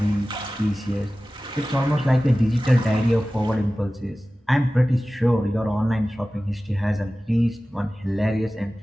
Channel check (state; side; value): normal; both; correlation 0.96